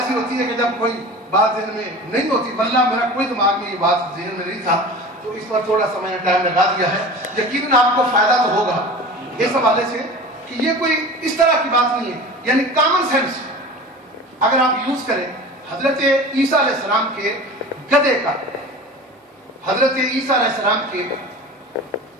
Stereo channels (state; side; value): normal; both; correlation 0.36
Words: ہوتی ہے کہ جب کوئی بات ذہن میں نہیں ہوتی، واللہ میرا کوئی دماغ میں یہ بات ذہن میں نہیں تھا، تو اس پر تھوڑا سا میں نے ٹائم لگا دیا ہے۔ یقیناً آپ کو فائدہ تو ہوگا اس حوالے سے کہ یہ کوئی اس طرح کی بات نہیں ہے، یعنی کامن سینس اگر آپ یوز کریں۔ حضرت عیسیٰ علیہ السلام کے گدھے کا، حضرت عیسیٰ علیہ السلام کے